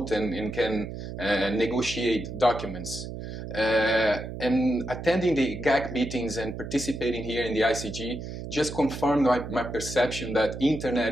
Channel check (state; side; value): noise; right; hum, 8 dB below the sound